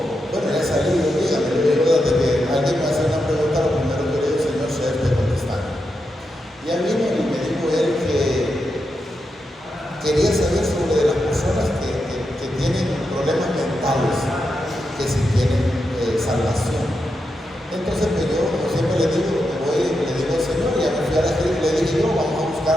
bueno, ya salí, dígame, yo digo, desde que alguien me hace una pregunta, lo primero que le digo, Señor, sea usted contestando. Ya vino y me dijo él que quería saber sobre las personas que tienen problemas mentales, que si tienen salvación. Entonces, pues yo, como siempre le digo, le digo al Señor, ya me fui a la escritura, le dije yo, vamos a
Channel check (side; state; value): both; normal; correlation 0.86